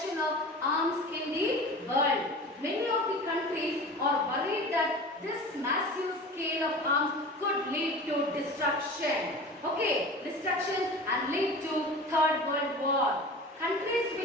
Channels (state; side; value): normal; both; correlation 0.36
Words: of arms in the world. Many of the countries are worried that this massive scale of arms could lead to destruction. Okay, destruction and lead to Third World War. Countries